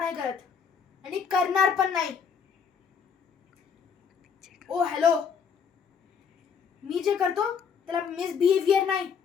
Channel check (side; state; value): right; quieter; 6.6 dB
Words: करत आणि करणार पण नाही. ओ हॅलो, मी जे करतो त्याला मिसबिहेवियर नाही,